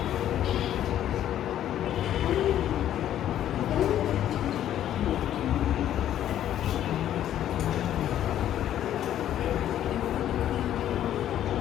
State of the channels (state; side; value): quieter; right; 11.4 dB